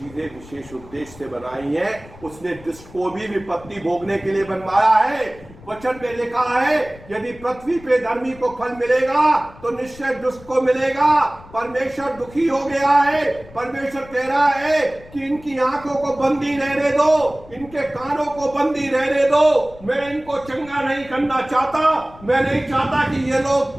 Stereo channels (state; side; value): noise; left; rumble, 20 dB below the sound